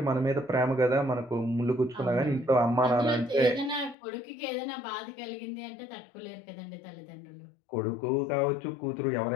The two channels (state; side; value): drops out; right; at 4.0 s